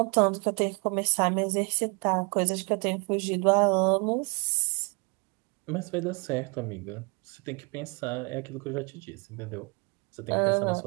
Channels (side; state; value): left; quieter; 31.4 dB